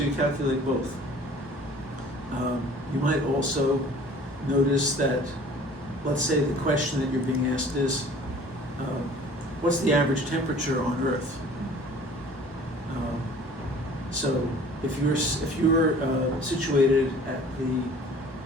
calculate both. You might also notice that, let's say the question that you're being asked is, what's the average temperature on Earth? So if you're situated at the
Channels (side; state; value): both; normal; correlation 0.49